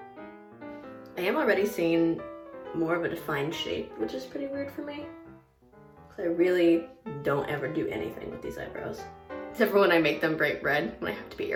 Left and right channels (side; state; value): both; identical; correlation 1.00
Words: I am already seeing more of a defined shape, which is pretty weird for me, because I really don't ever do anything with these eyebrows. except for when I make them bright red when I have to be